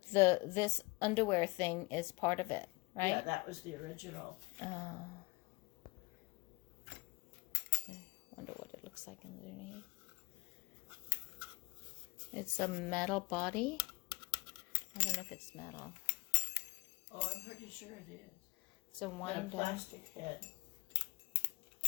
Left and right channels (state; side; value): quieter; right; 25.2 dB